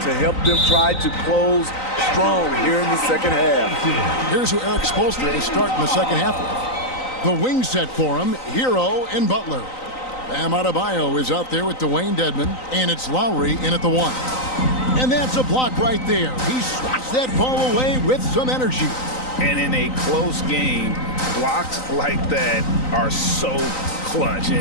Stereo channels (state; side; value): late; right; 3.9 ms